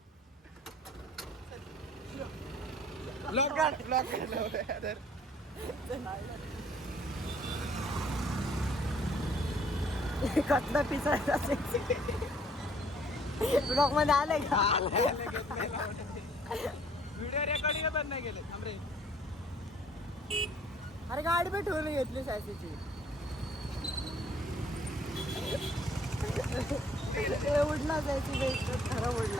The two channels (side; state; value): both; normal; correlation 0.59